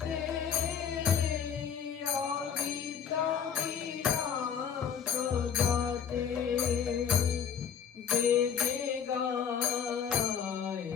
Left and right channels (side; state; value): right; quieter; 7.6 dB